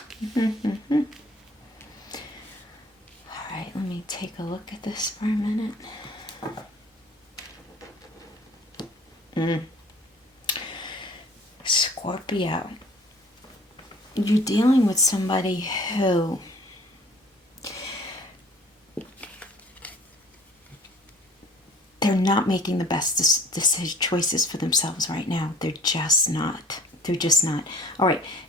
All right, let me take a look at this for a minute. Scorpio, you're dealing with somebody who they're not making the best choices for themselves right now. They're just not. All right,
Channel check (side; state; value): both; normal; correlation 0.51